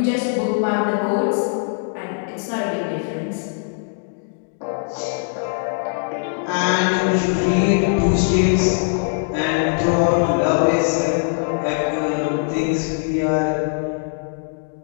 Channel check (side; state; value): right; silent; digital silence